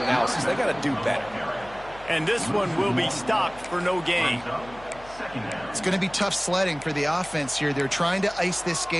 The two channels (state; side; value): noise; left; hum, 20 dB below the sound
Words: They got to do better. And this one will be stopped for no gain. It's going to be tough sledding for the offense here. They're trying to ice this